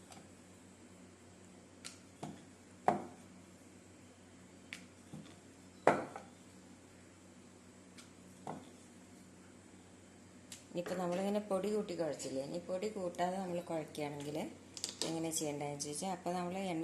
ഇനിയിപ്പോൾ നമ്മളിങ്ങനെ പൊടി കൂട്ടി കുഴച്ചില്ലേ, ഇനി പൊടി കൂട്ടാതെ നമ്മൾ കുഴക്കുകയാണെങ്കിൽ എങ്ങനെ ചെയ്യേണ്ടതെന്ന് ചോദിച്ചാൽ, അപ്പോൾ നമ്മൾ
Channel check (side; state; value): both; identical; correlation 1.00